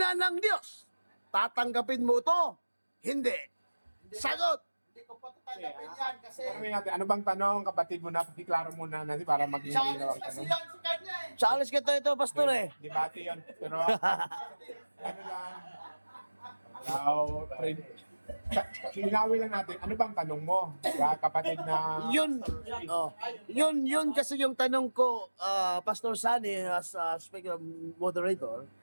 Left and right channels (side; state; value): both; inverted; correlation -1.00